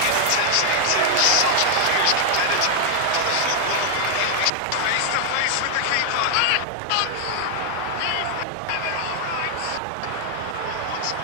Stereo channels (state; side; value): different; both; correlation 0.00